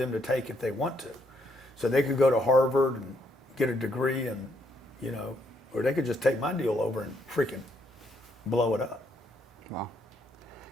to take if they want to. So they could go to Harvard and get a degree, and or they could just take my deal over and freaking blow it up. Wow.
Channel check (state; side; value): normal; both; correlation 0.73